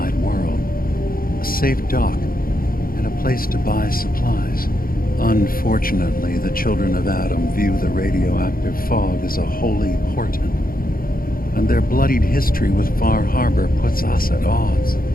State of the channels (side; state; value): right; late; 0.42 ms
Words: world. A safe dock, and a place to buy supplies. Unfortunately, the children of Adam view the radioactive fog as a holy portent, and their bloodied history with Far Harbor puts us at odds.